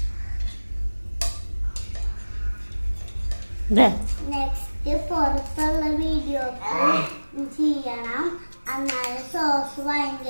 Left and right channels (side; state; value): both; inverted; correlation -1.00